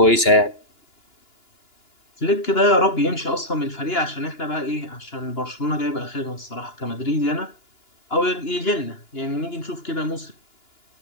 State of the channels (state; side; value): late; right; 2.9 ms